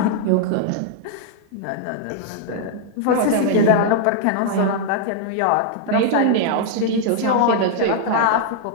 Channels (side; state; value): both; different; correlation -0.01